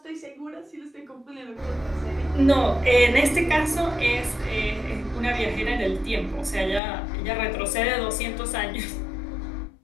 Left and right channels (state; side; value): drops out; right; at 6.8 s